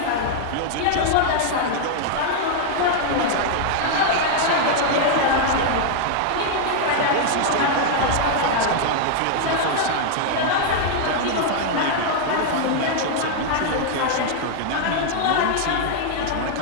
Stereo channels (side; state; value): both; different; correlation 0.00